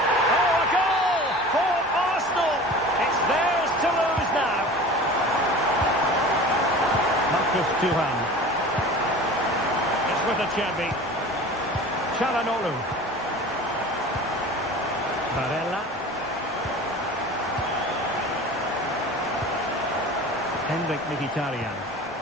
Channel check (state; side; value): normal; both; correlation 0.39